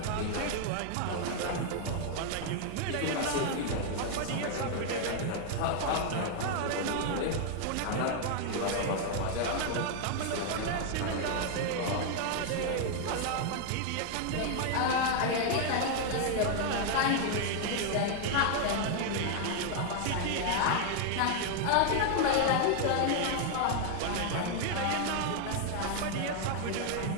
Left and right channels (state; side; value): different; both; correlation 0.00